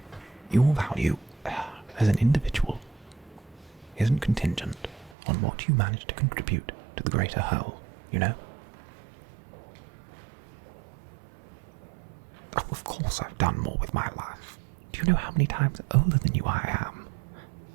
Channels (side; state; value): left; drops out; at 5.2 s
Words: your value as an individual isn't contingent on what you manage to contribute to the greater whole, you know? Oh, of course I've done more with my life. Do you know how many times older than you I am?